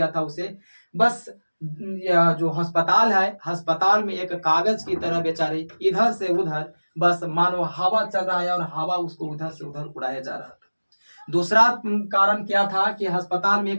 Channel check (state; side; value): inverted; both; correlation -1.00